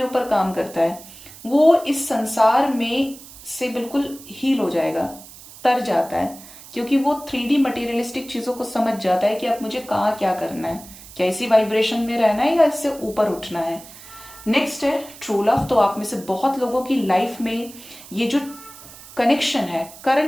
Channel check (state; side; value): noise; right; hiss, 18 dB below the sound